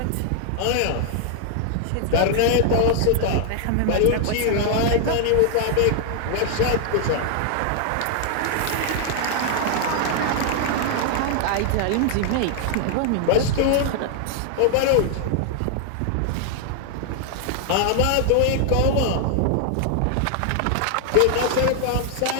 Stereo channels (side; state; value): both; different; correlation 0.00